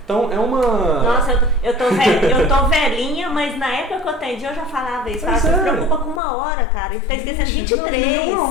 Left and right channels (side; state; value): right; drops out; at 6.2 s